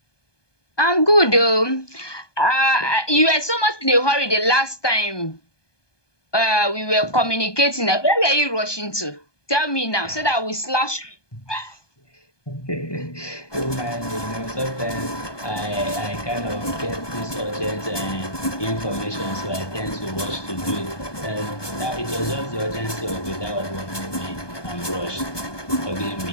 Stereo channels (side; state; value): right; late; 1.2 ms